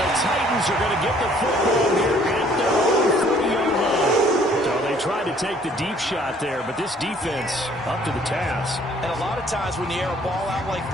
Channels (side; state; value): both; normal; correlation 0.59